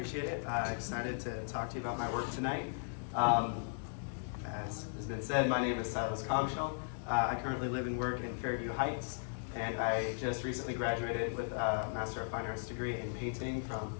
it. Excited to talk to you about my work tonight. As has been said, my name is Silas Coggeshall. I currently live and work in Fairview Heights, and I just recently graduated with a Master of Fine Arts degree in painting from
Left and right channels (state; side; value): silent; right; digital silence